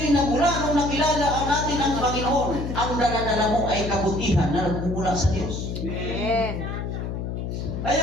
nagmula, nung nakilala ang natin ang Panginoon, ang dala-dala mo ay kabutihan na nagmumula sa Diyos. Amen. Kaya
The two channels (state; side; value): noise; left; hum, 4 dB below the sound